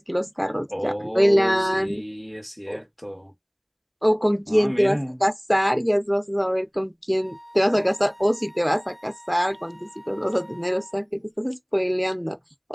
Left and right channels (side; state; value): both; identical; correlation 1.00